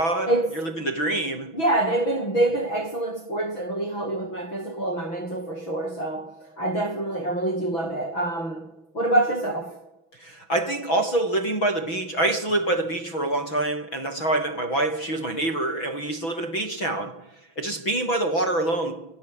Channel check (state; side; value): late; right; 6.1 ms